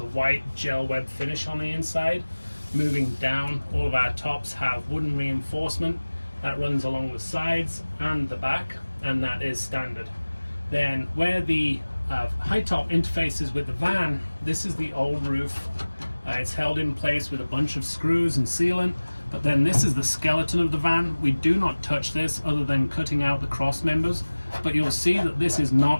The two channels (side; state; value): both; inverted; correlation -1.00